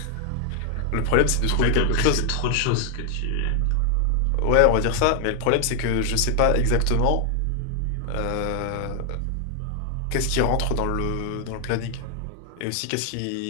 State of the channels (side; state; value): both; different; correlation 0.00